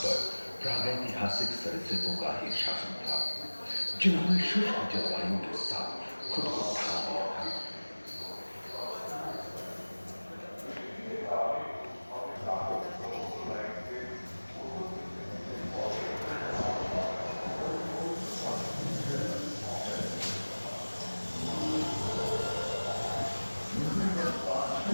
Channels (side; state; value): both; inverted; correlation -1.00